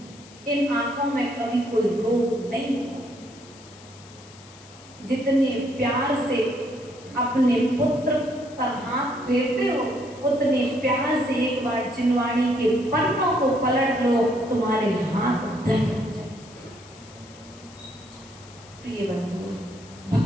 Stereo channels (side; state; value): left; noise; hiss, 22 dB below the sound